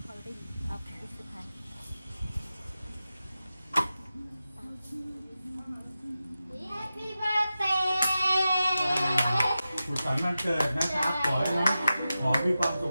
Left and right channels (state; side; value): inverted; both; correlation -0.93